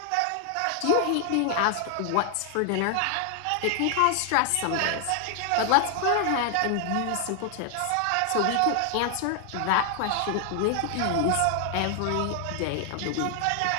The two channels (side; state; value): both; different; correlation 0.00